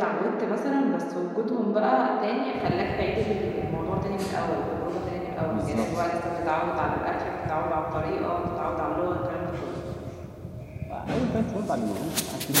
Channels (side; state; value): both; identical; correlation 1.00